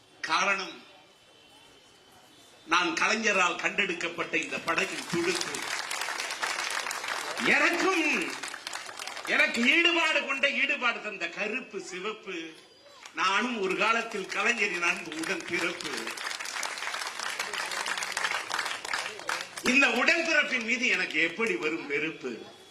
காரணம், நான் கலைஞரால் கண்டெடுக்கப்பட்ட இந்த படகின் துடுப்பு. எனக்கு ஈடுபாடு கொண்ட ஈடுபாடு தந்த கருப்பு சிவப்பு. நானும் ஒரு காலத்தில் கலைஞரின் அன்பு உடன் பிறப்பு. இந்த உடன்பிறப்பின் மீது எனக்கு எப்படி வரும் வெறுப்பு?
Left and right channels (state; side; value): identical; both; correlation 1.00